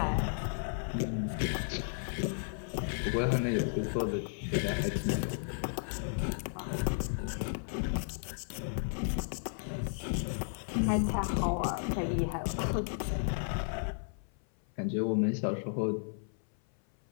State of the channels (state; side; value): silent; right; 55 dB below the other